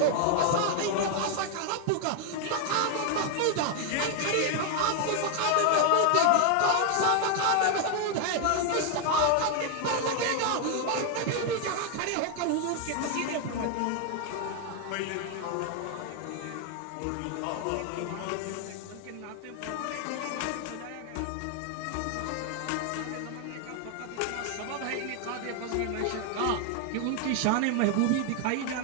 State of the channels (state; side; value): different; both; correlation 0.01